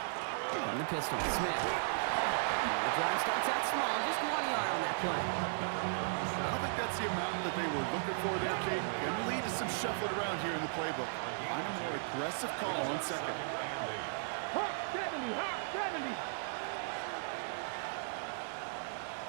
From the pistol, Smith. The drive starts out small, just 1 yard on that play. the amount that they were looking for there, Kate. And the lead is some shuffling around here in the playbook. Find a more aggressive call on second. Hawk 70, Hawk 70.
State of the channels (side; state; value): left; silent; 54 dB below the other